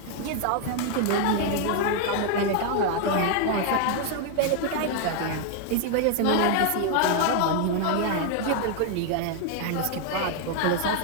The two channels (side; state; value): both; different; correlation 0.00